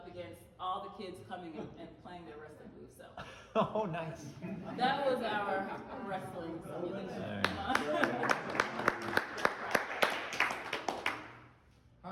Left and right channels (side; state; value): both; identical; correlation 1.00